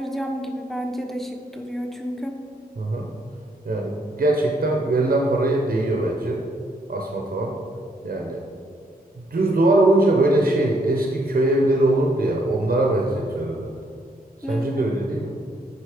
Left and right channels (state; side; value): normal; both; correlation 0.71